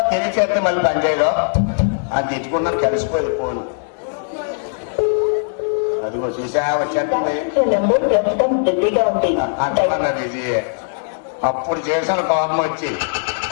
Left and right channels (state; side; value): silent; right; digital silence